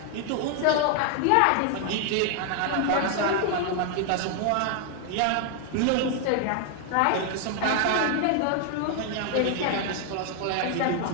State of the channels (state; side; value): different; both; correlation 0.00